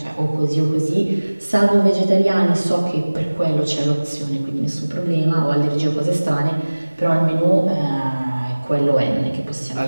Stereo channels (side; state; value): both; inverted; correlation -1.00